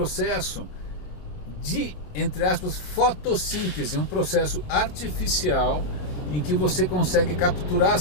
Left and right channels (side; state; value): right; late; 27 ms